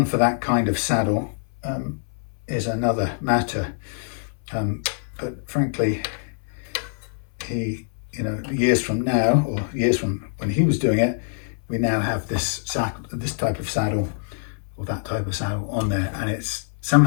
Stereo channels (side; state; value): right; silent; 62 dB below the other